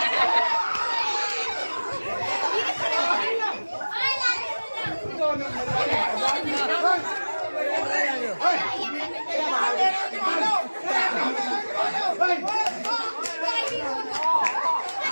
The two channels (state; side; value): inverted; both; correlation -1.00